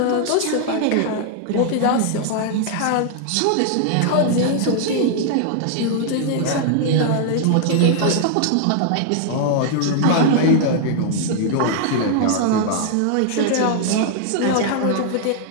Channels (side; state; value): both; different; correlation -0.01